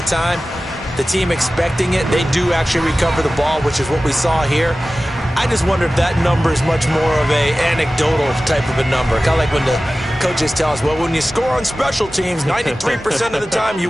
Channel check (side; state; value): both; normal; correlation 0.96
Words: time, the team expecting it, they do actually recover the ball, which is what we saw here. I just wonder if that number is much more of a anecdotal type of a number. Kind of like when the coaches tell us, well, when you score on special teams, 93% of the time you